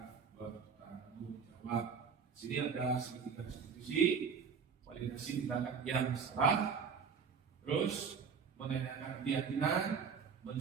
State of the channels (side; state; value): left; quieter; 6.2 dB